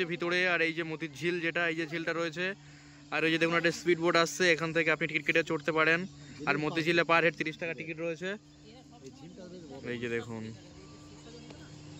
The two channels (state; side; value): identical; both; correlation 1.00